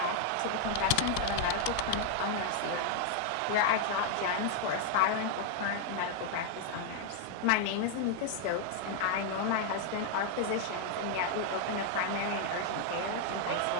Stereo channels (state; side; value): different; both; correlation 0.00